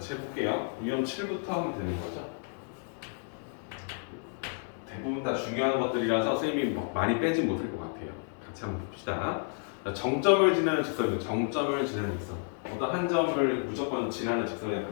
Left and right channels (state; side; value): silent; right; 57 dB below the other